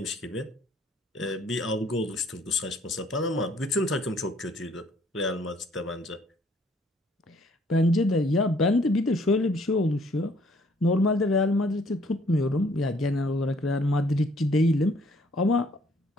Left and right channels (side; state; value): both; normal; correlation 0.62